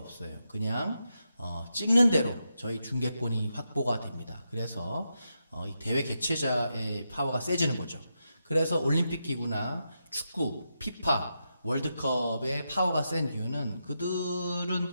그냥 찍는 대로 저희 중개권이 확보가 됩니다. 그래서 이 대회 개최자의 파워가 세지는 거죠. 그래서 올림픽 기구나 축구, 피파, 월드컵의 파워가 센 이유는 그들은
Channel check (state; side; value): inverted; both; correlation -0.86